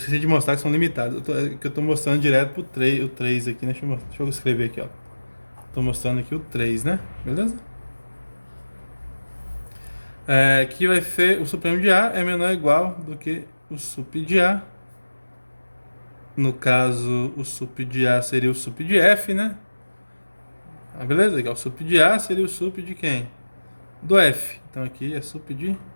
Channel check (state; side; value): inverted; both; correlation -1.00